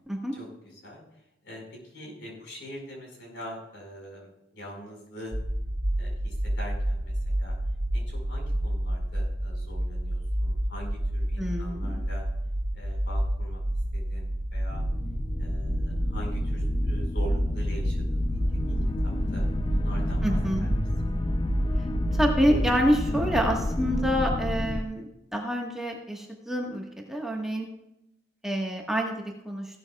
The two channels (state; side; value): normal; both; correlation 0.90